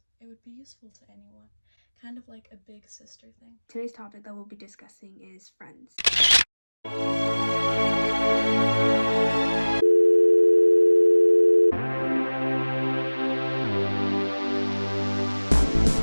it would be useful to anyone, kind of like a big sister thing. Today's topic that we'll be discussing is friends.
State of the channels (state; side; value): inverted; both; correlation -1.00